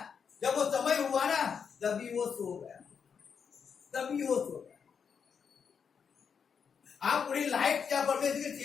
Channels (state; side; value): quieter; right; 6.6 dB